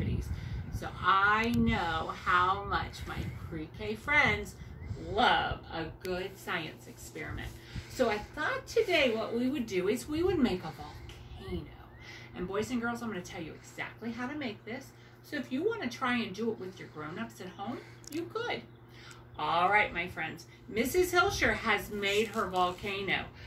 So I know how much my pre-K friends love a good science experiment. So I thought today what we would do is we would make a volcano. And boys and girls, I'm going to tell you exactly how to make this. So if you want to try and do it with your grown-ups at home, you could. All right, my friends, Mrs. Hilsher has made her volcano.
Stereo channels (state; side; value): identical; both; correlation 1.00